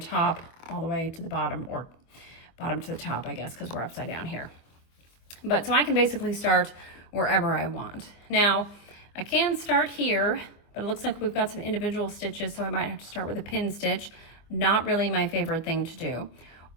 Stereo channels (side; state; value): right; late; 24 ms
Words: all the way to the bottom, or bottom to the top, I guess, because we're upside down here. But so I can basically start wherever I want. Now, I can start here, but it looks like we've got some individual stitches, so I might have to start with a pin stitch. Not really my favorite thing to do.